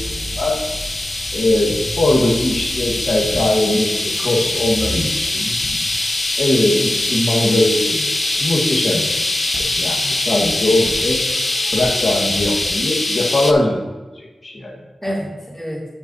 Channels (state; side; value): normal; both; correlation 0.93